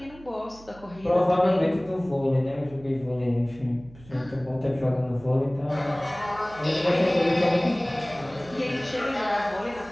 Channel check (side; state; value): right; noise; hum, 21 dB below the sound